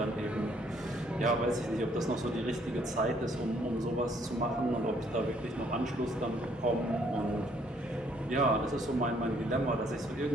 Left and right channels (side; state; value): both; normal; correlation 0.65